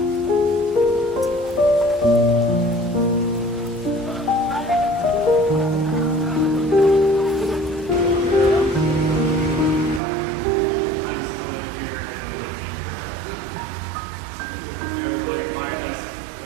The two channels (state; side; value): drops out; left; at 10.0 s